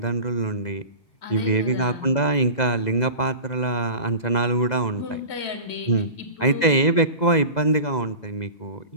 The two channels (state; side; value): late; right; 2.0 ms